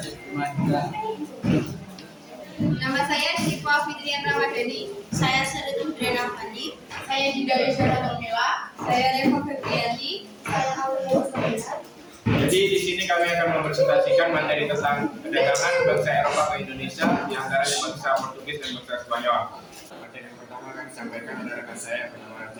Kumahira. Nama saya Syifa Fitrian Ramadhani. Saya Saritul Drena Fandi. Saya Dinda Yusara Tomila. Saya Reva Febrianti. Saya Aulia Sabina. Jadi di sini kami akan mempresentasikan materi tentang perdagangan bangsa Eropa ke Indonesia, di antaranya bangsa Portugis dan bangsa Spanyol. Materi yang pertama akan disampaikan oleh rekan saya bernama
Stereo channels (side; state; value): both; identical; correlation 1.00